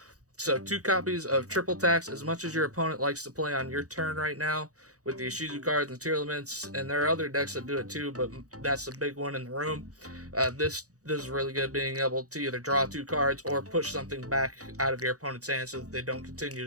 So 2 copies of Triple Tax. As much as your opponent likes to play on your turn right now with the Ishizu cards and Tearlaments, and there are other decks that do it too, but that's the big one in the room. This is really good, being able to either draw 2 cards or push something back out of your opponent's hand so that they don't continue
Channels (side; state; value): left; late; 0.66 ms